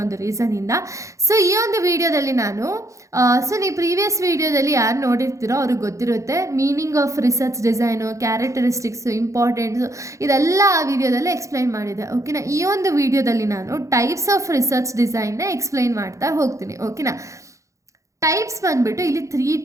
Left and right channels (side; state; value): left; late; 0.15 ms